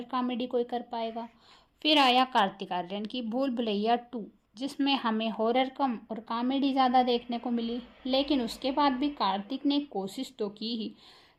कॉमेडी कोई कर पाएगा। फिर आया कार्तिक आर्यन की भूल भुलैया 2, जिसमें हमें हॉरर कम और कॉमेडी ज़्यादा देखने को मिली, लेकिन उसके बाद भी कार्तिक ने कोशिश तो की ही।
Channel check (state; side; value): identical; both; correlation 1.00